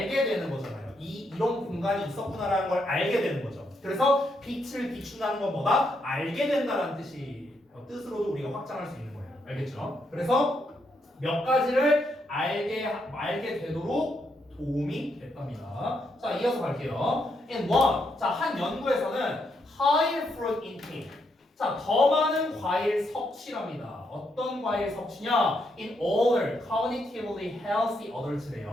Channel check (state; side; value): normal; both; correlation 0.78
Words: 되는 거잖아요. 이런 공간이 있었구나라는 걸 알게 되는 거죠. 그래서 빛을 비춘다는 건 뭐다? 알게 된다는 뜻으로도 우리가 확장할 수 있는 거예요. 알겠죠? 그래서 몇 가지를 알게 되도록 도움이 됐답니다. 자, 이어서 갈게요. In one, 자, 한 연구에서는 higher fruit intake. 자, 더 많은 과일 섭취랍니다. 어떤 과일 섭취냐? In older, cognitively healthy